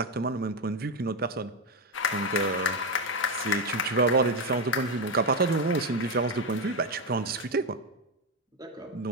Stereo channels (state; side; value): normal; both; correlation 0.08